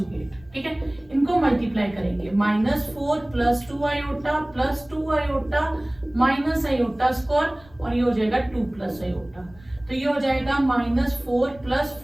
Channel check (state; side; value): noise; left; rumble, 25 dB below the sound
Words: ठीक है, इनको मल्टीप्लाई करेंगे -4 plus 2 iota plus 2 iota minus iota square और ये हो जाएगा 2 प्लस आयोटा। तो ये हो जाएगा -4 plus